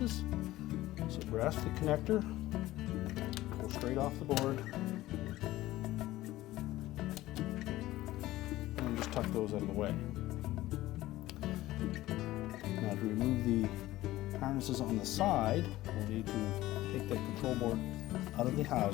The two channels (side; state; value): right; quieter; 16.4 dB